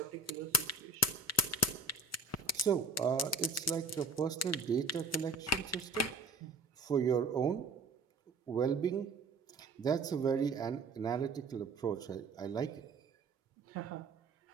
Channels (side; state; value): left; quieter; 3.2 dB